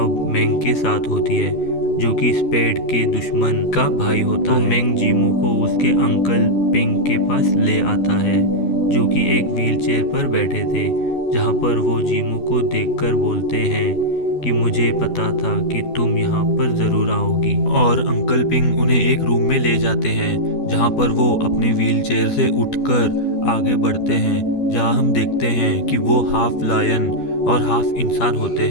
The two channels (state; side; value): late; right; 12 ms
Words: मेंग के साथ होती है जो कि स्पेड के दुश्मन का भाई होता है। तो मेंग जीमो को उसके अंकल पिंग के पास ले आता है जो कि एक व्हीलचेयर पर बैठे थे, जहां पर वो जीमो को देखकर बोलते हैं कि मुझे पता था कि तुम यहाँ पर ज़रूर आओगी। और अंकल पिंग उन्हें एक रूम में ले जाते हैं जहाँ पर वो अपने व्हीलचेयर से उठकर आगे बढ़ते हैं, जहाँ हम देखते हैं कि वो हाफ लायन और हाफ इंसान होते